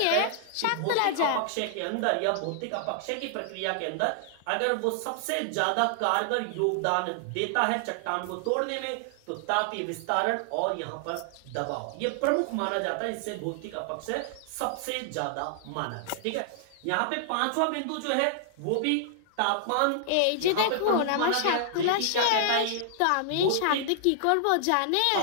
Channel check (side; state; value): both; different; correlation 0.00